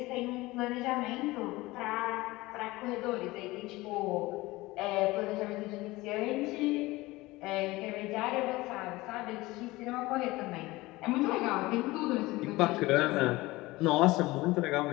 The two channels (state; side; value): quieter; right; 20.1 dB